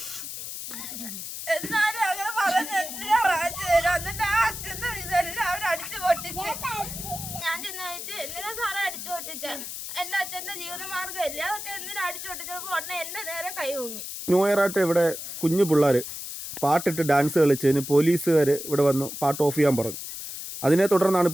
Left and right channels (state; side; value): noise; left; hiss, 8 dB below the sound